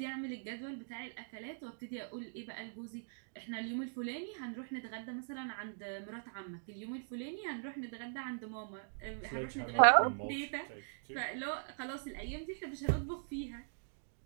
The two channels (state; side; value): silent; left; digital silence